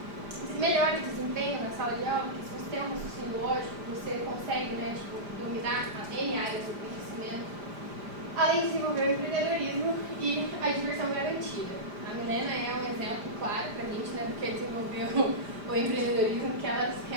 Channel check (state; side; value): late; left; 5.0 ms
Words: Você melhora o desempenho na sala de aula, porque se você tem um raciocínio lógico, você consegue, né, dominar as N áreas do conhecimento, além de desenvolver o empreendedorismo e a diversão garantida. A Milena é um exemplo claro para a gente, né, do que é desenvolver o empreendedorismo, que ela